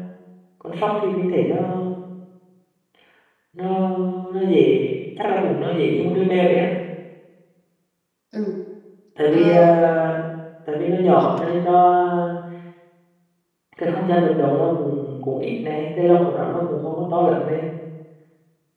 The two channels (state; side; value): identical; both; correlation 1.00